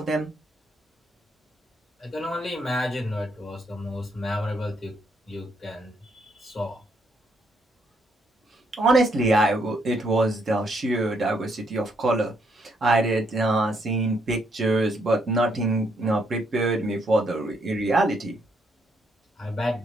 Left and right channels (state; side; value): normal; both; correlation 0.74